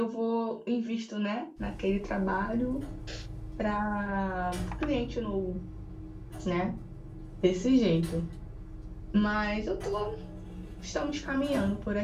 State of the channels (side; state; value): both; identical; correlation 1.00